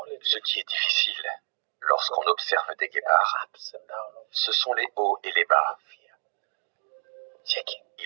Ce qui est difficile lorsqu'on observe des guépards, ce sont les hauts et les bas.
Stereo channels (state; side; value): silent; left; digital silence